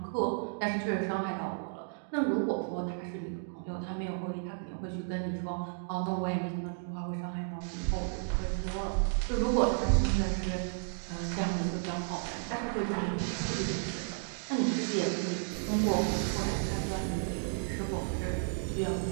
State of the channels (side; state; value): left; silent; digital silence